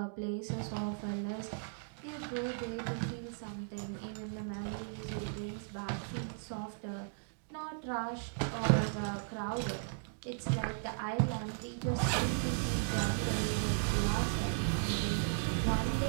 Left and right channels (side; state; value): left; silent; digital silence